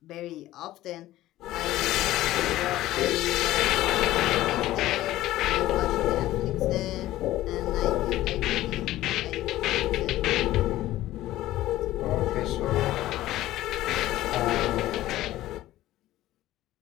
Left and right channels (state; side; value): quieter; right; 15.3 dB